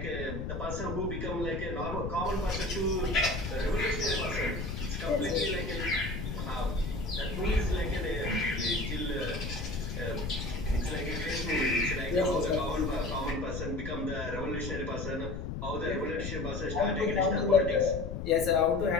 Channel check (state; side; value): noise; left; rumble, 5 dB below the sound